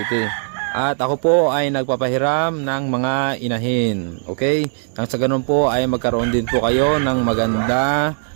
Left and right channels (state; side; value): silent; left; 65 dB below the other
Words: At ako po ay nagpapahiram ng mga inahin. Okay? Nang sa ganun po ay magkaroon din po kayo ng maganda